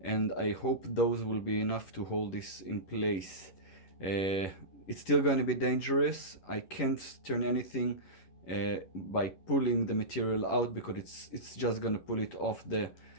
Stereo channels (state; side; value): late; right; 11 ms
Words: I hope those will be enough to hold this in place. It's still going to be dangerous. I can't turn anything by pulling the material out because it's just going to pull it off the